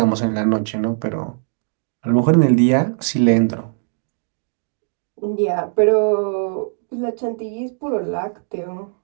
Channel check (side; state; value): left; silent; digital silence